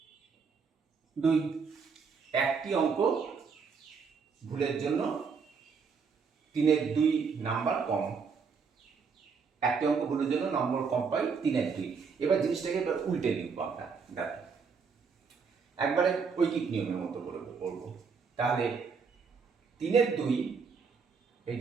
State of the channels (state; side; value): quieter; left; 5.5 dB